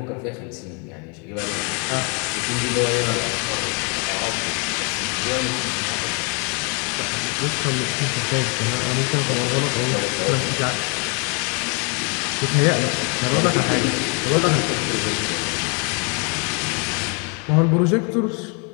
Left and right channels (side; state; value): right; quieter; 35.3 dB